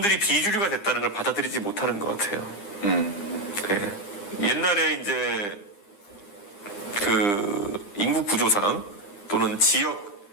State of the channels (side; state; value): right; late; 9.9 ms